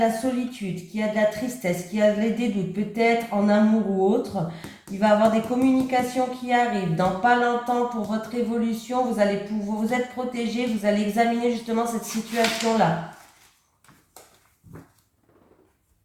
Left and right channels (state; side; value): identical; both; correlation 1.00